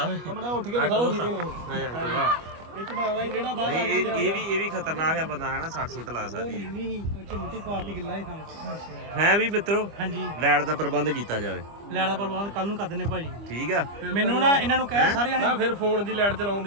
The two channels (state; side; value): late; left; 25 ms